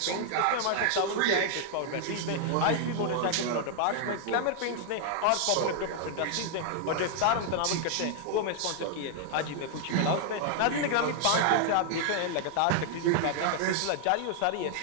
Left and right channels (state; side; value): different; both; correlation 0.00